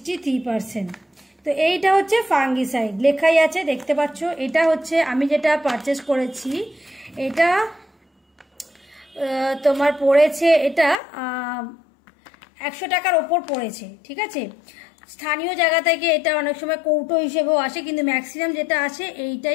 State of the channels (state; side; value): drops out; right; at 11.0 s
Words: তো এইটা হচ্ছে ফাঙ্গিসাইড, লেখাই আছে দেখতে পাচ্ছ। এটা হচ্ছে আমি যেটা পারচেস করেছি, এটা তোমার পড়েছে, এটা 100 টাকার ওপর পড়েছে, ঠিক আছে। স্থানীয় জায়গা থেকে এটা অনেক সময় কৌটো হিসেবেও আসে, কিন্তু ম্যাক্সিমাম যেটা আসে